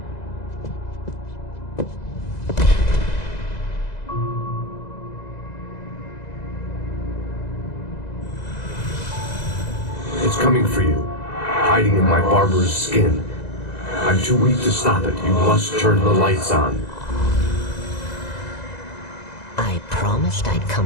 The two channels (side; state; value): right; late; 2.0 ms